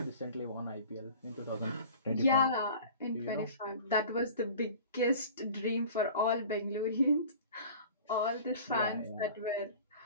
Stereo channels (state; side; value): inverted; both; correlation -0.42